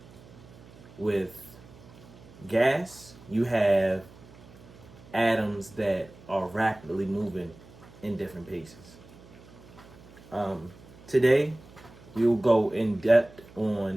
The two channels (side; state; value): right; noise; hum, 21 dB below the sound